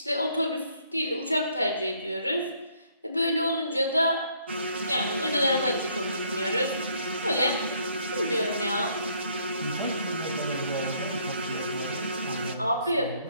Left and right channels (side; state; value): both; inverted; correlation -0.66